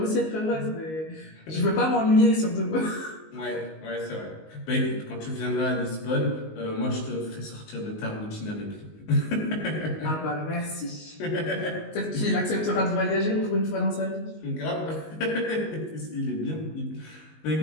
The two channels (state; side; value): late; right; 19 ms